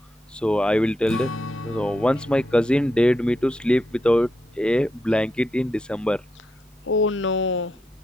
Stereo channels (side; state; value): both; normal; correlation 0.83